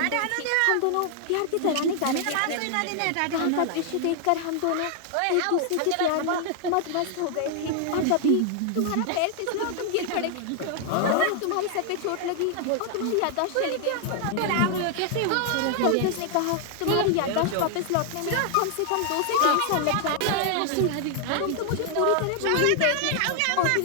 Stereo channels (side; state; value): both; different; correlation 0.00